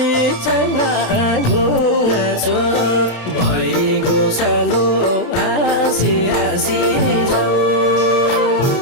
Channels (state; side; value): late; right; 27 ms